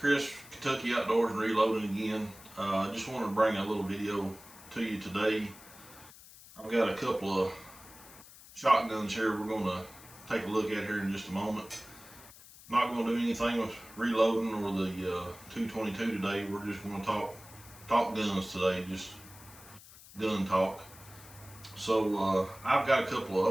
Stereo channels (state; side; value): noise; left; hiss, 20 dB below the sound